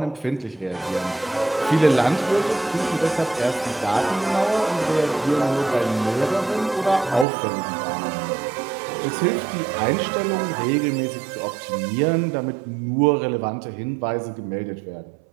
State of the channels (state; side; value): drops out; left; at 7.2 s